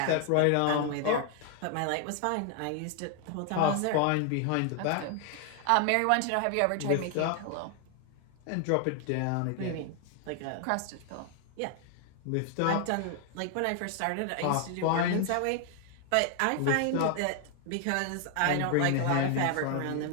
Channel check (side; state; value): both; different; correlation 0.00